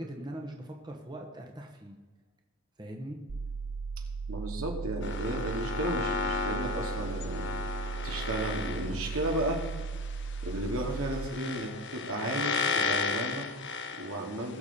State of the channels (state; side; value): normal; both; correlation 0.29